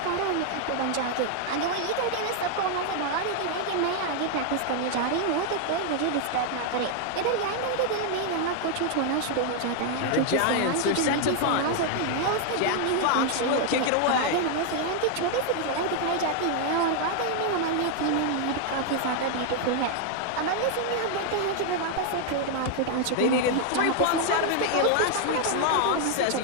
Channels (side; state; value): both; different; correlation 0.00